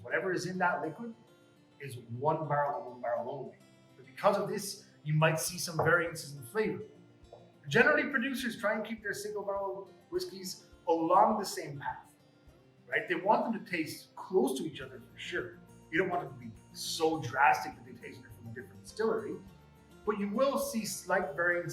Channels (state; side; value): identical; both; correlation 1.00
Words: Whatever is in that liquid is one barrel and one barrel only. But because of this, you might see some variances in flavor. Generally, producers try and keep their single barrel whiskeys along the same path, right? They want them to taste close to each other for sure. You don't want them to be so drastic that they taste it from a different distillery, but you will see slight